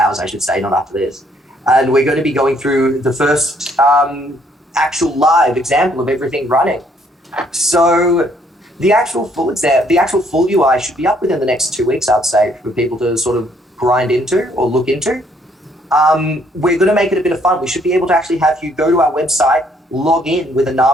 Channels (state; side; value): normal; both; correlation 0.66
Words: I should say, not after this. And we're going to be going through the first actual live example of everything running. So the actual full UI should be up within the next 2 weeks, I'd say, for people to sort of grind into or look into. We're going to make it a bit of fun. We should be able to actually have you go to our website, log in with a